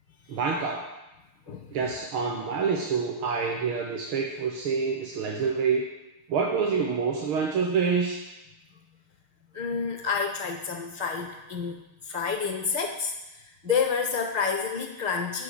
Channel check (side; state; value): left; late; 6.5 ms